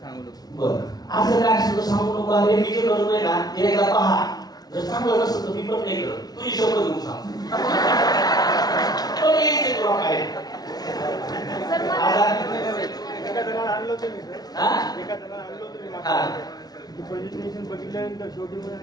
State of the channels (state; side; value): late; right; 0.19 ms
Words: सांगू नको. बरं, असं काय असं तर सांगू नको. अरे मी जे करतोय ना ते एकदा पहा, जर चांगलं नसतं तर मी पण नाही करत. तुझी शब्द घेऊन सांग. पण यायचे तुला काय सर मला आता एका जणाला आणलं होतं मी सर, हा एका जणाला आणलं होतं मी हा प्रेझेंटेशन बघितल्यानंतर शेवटी